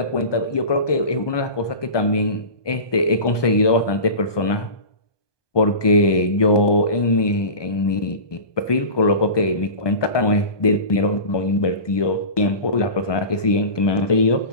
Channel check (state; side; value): late; right; 1.2 ms